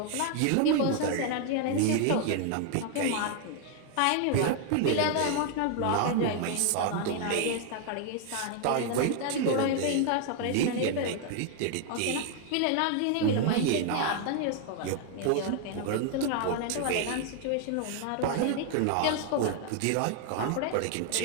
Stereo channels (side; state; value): both; different; correlation 0.00